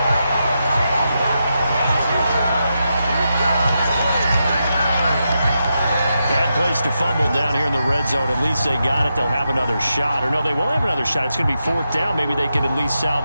Place to fumble down here in the red zone. At least they got it. They'll have another shot. Or no, they won't have another shot. It's going to be 4th down. Maybe they can at least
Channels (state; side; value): inverted; both; correlation -0.86